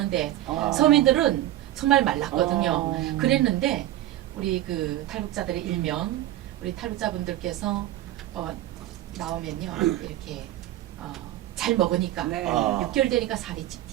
서민들은 정말 말랐거든요. 그랬는데 우리 그 탈북자들의 일명 우리 탈북자분들께서 나오면요 이렇게 잘 먹으니까 네. 6개월 되니까 살이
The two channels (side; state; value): left; quieter; 13.9 dB